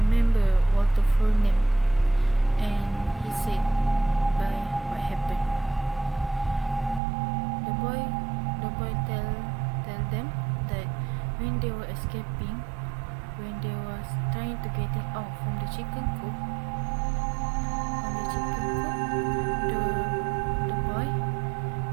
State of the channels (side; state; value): left; drops out; at 7.0 s